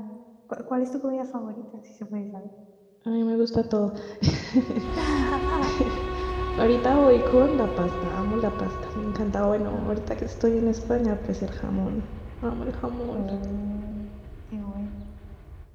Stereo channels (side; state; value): both; identical; correlation 1.00